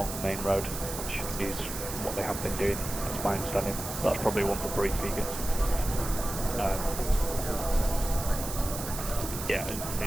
the main road, which is what they have been doing. That's my understanding. That's probably one for brief vegans. Yeah, and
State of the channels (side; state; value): right; noise; hiss, 7 dB below the sound